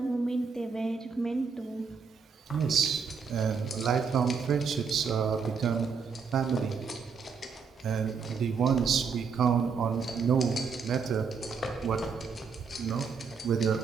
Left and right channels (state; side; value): quieter; left; 5.6 dB